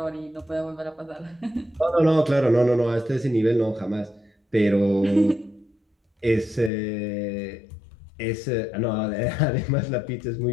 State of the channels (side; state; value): right; drops out; at 6.7 s